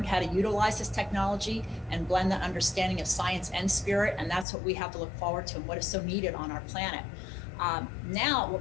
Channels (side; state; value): right; drops out; at 4.5 s